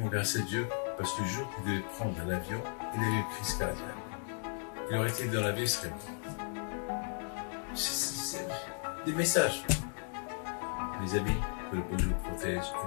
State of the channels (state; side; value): silent; right; 54 dB below the other